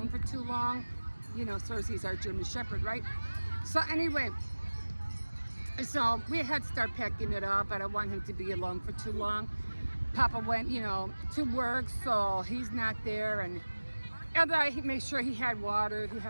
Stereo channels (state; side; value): inverted; both; correlation -1.00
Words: for too long. You know, Cersei's our German Shepherd, right? So anyway, so we had to start packing it up. I don't want him to be alone for too long. Papa went, you know, to work, so he's not there, and I made sure he had water, he